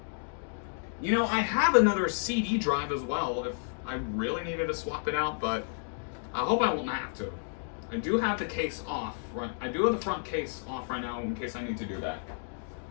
You know, I have another CD drive as well if I really needed to swap it out, but I hope I won't have to. I do have the case off. Right? I do have the front case off right now in case I need to do that.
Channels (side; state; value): right; silent; digital silence